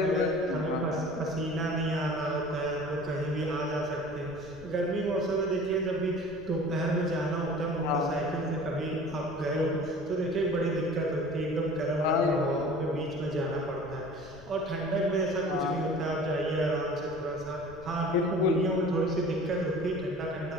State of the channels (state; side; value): noise; left; rumble, 20 dB below the sound